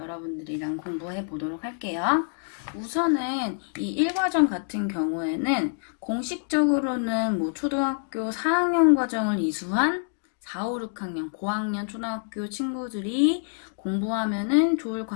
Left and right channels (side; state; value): right; silent; digital silence